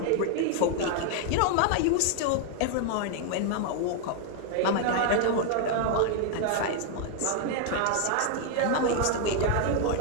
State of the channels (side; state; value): both; different; correlation 0.00